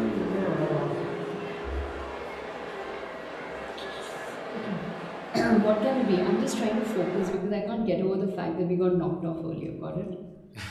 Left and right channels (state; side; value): identical; both; correlation 1.00